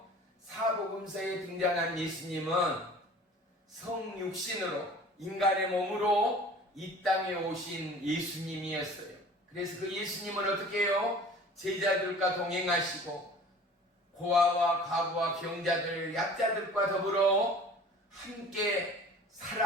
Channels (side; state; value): both; normal; correlation 0.45